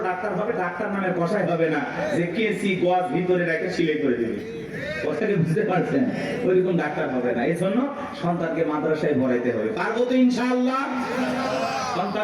ডাক্তার হবে, ডাক্তার নামে কষাই হবে না যে কেসি গজ ভিতরে রেখে সিলাই করে দেবে। কথাটা বুঝতে পারছেন? ওইরকম ডাক্তার হবে না। এই জন্য সন্তানকে মাদ্রাসায় পড়াইতে হবে। পারবো তো ইনশাআল্লাহ?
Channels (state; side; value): identical; both; correlation 1.00